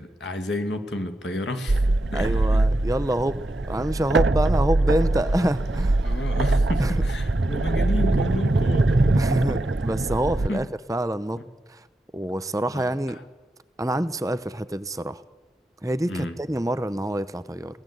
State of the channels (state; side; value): normal; both; correlation 0.87